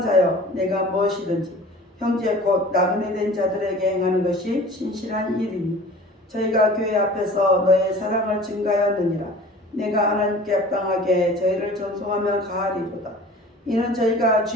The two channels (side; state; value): both; normal; correlation 0.43